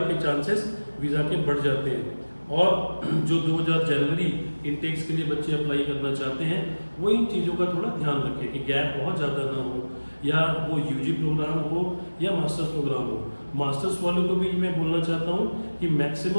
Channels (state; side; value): inverted; both; correlation -1.00